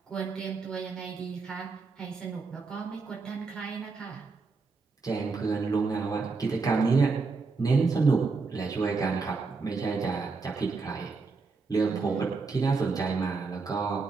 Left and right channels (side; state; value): left; quieter; 4.4 dB